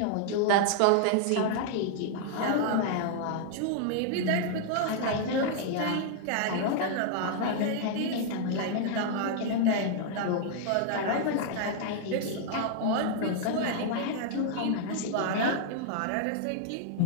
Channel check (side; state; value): both; different; correlation -0.01